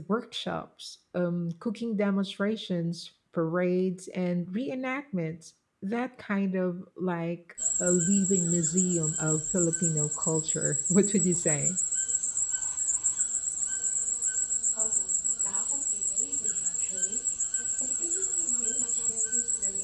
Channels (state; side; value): identical; both; correlation 1.00